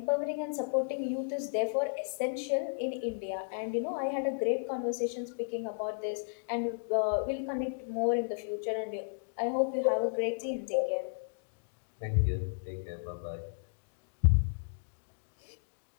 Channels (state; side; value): silent; right; digital silence